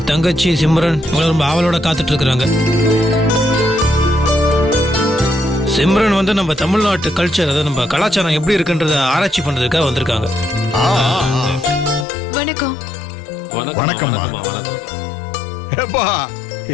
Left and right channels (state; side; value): drops out; right; at 12.1 s